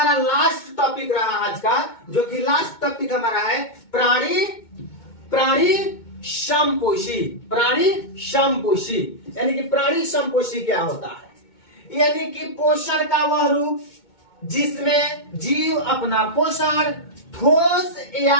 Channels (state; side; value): late; right; 2.2 ms